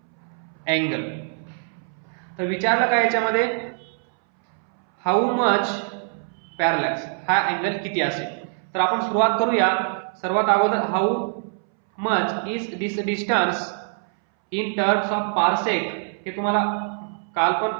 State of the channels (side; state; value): left; silent; 63 dB below the other